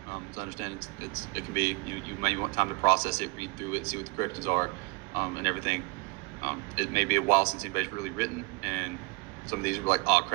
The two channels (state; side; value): quieter; left; 28.3 dB